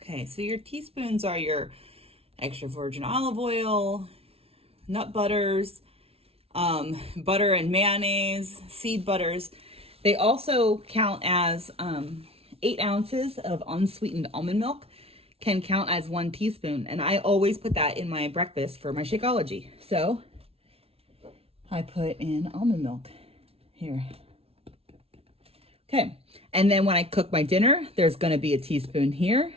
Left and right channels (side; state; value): left; late; 0.29 ms